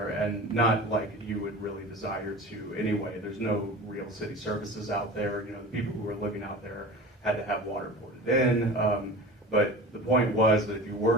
and not like you would really desire to anyway. There's no real city services out there. You know, the people who were living out there had to have water poured in. But the point was that if you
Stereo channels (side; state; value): both; normal; correlation 0.35